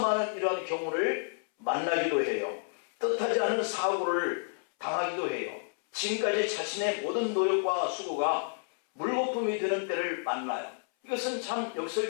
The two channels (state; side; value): silent; right; 58 dB below the other